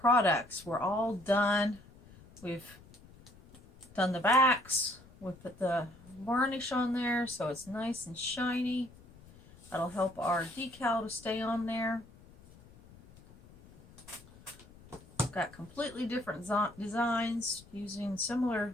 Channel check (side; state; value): left; noise; rumble, 23 dB below the sound